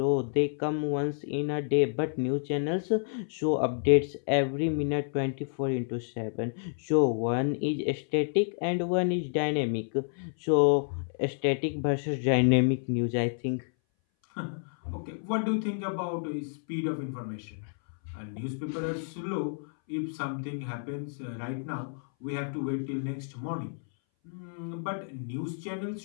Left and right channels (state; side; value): silent; right; 58 dB below the other